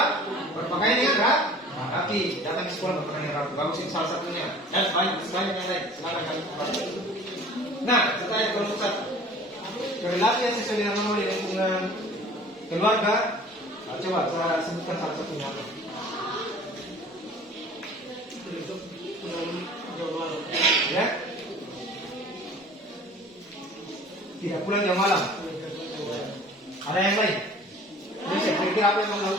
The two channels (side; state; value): both; normal; correlation 0.46